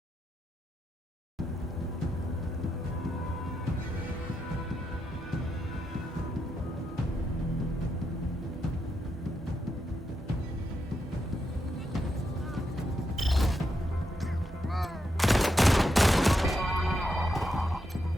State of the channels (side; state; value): both; normal; correlation 0.83